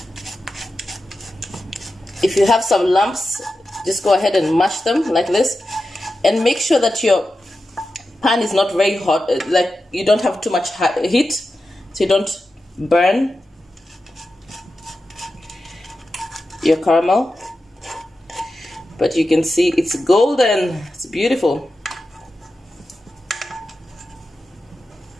If you have some lumps, just go ahead and mash them like this, and make sure that your pan is not very hot, like you don't have too much heat, so you don't burn your caramel. But you can see it's golden. It's beautiful.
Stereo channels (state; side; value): normal; both; correlation 0.91